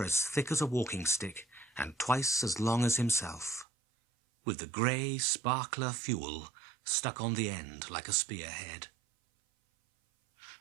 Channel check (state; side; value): drops out; left; at 3.7 s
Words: as thick as a walking stick and twice as long as himself, with the grey sparkler fuel stuck on the end like a spearhead.